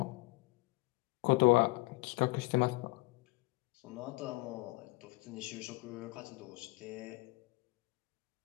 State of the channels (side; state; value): right; quieter; 23.7 dB